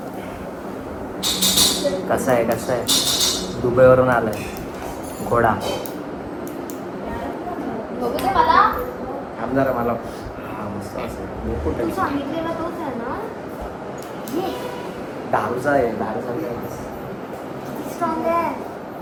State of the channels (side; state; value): both; identical; correlation 1.00